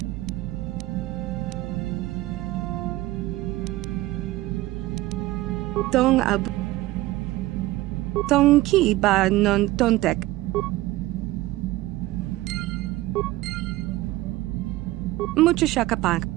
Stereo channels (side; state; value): left; quieter; 17.6 dB